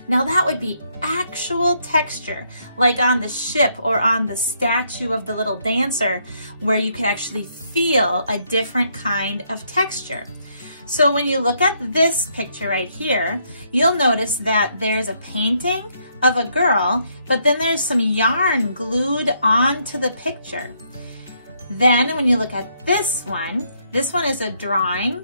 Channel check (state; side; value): inverted; both; correlation -0.73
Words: Now that would be actual texture, like on the ship or on the statue of the little dancer, where you could actually feel a different kind of texture. So when you look at this picture right here, you'll notice that there's a painting of a girl, but then there's some yarn glued onto the picture. Then when you look at this one is a